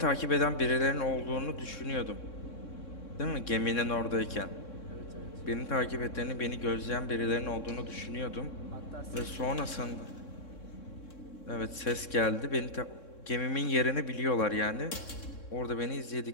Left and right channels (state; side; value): late; right; 3.6 ms